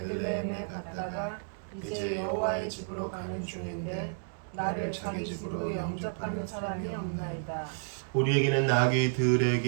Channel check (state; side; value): silent; left; digital silence